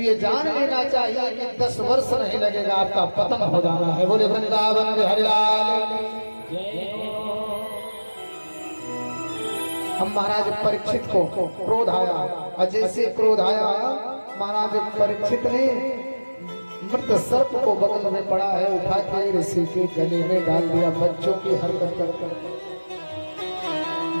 जान लेना चाहिए कि 10 वर्ष नहीं लगेगा, आपका पतन हो जाना है। बोले वृंदावन बिहारी लाल। हम महाराज परीक्षित को क्रोध आया, और जैसे क्रोध आया महाराज परीक्षित ने मृत सर्प को बगल में पड़ा है उठा के ऋषि के गले में डाल दिया। बच्चों की हरकत कर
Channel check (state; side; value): inverted; both; correlation -1.00